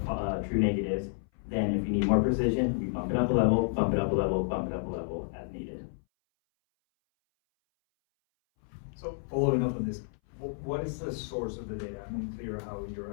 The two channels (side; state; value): right; silent; 57 dB below the other